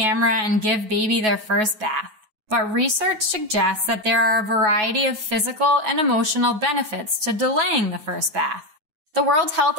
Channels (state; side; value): late; left; 9.3 ms